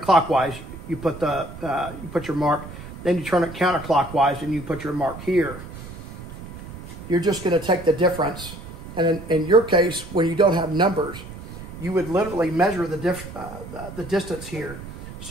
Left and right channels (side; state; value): right; noise; rumble, 13 dB below the sound